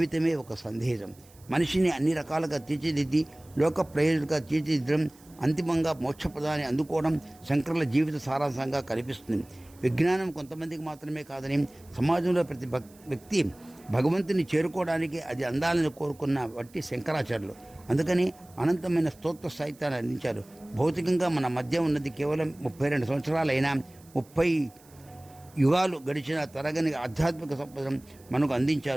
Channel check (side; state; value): right; noise; hiss, 27 dB below the sound